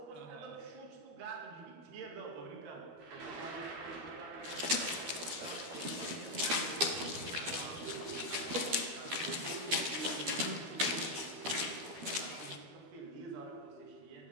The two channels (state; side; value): late; left; 12 ms